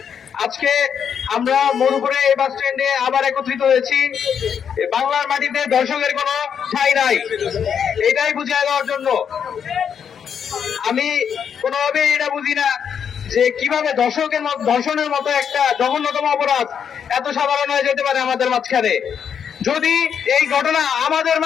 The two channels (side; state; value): right; quieter; 7.6 dB